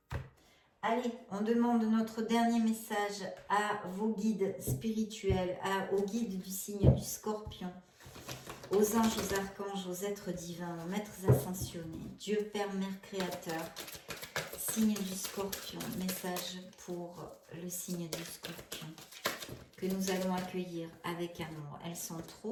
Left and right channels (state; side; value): identical; both; correlation 1.00